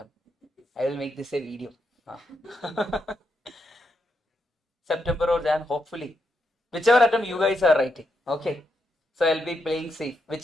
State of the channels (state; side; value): normal; both; correlation 0.82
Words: I will make this a video. September or Jan, hopefully. Whichever attempt you guys are writing. Okay. So I'll be playing safe.